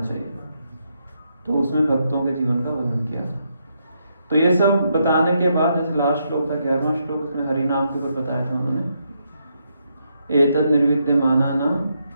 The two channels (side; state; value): both; inverted; correlation -0.79